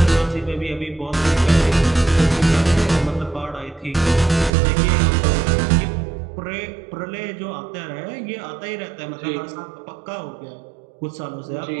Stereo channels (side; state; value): left; drops out; at 4.5 s